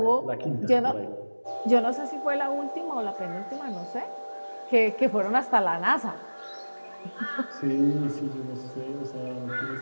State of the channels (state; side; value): inverted; both; correlation -1.00